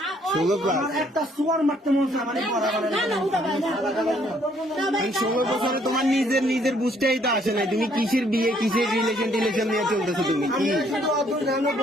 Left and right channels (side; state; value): both; normal; correlation 0.66